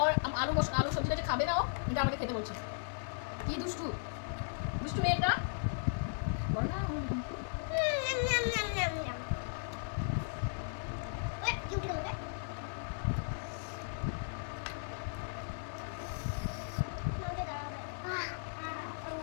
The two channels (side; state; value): right; silent; digital silence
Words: ওর আলু সবজিটা যে খাবে না ও, এটা আমাকে খেতে বলছে। কি দুষ্টু দুষ্টু মেয়েটা। বল না। NAM, NAM, NAM, NAM, NAM. ওই, কি উঠে গেল রে? আমাকে দাঁড়াবে।